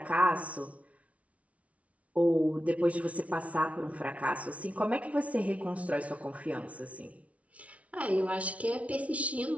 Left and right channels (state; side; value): late; left; 0.065 ms